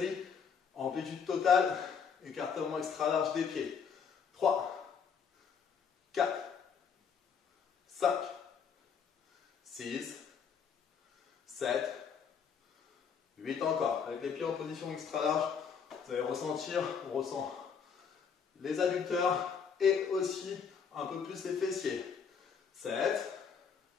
Amplitude totale. Écartement extra large des pieds. 3, 4, 5, 6, 7, 8 encore. Avec les pieds en position extra large, vous allez ressentir, on ressent les adducteurs et aussi un peu plus les fessiers. 7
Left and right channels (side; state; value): right; quieter; 6.6 dB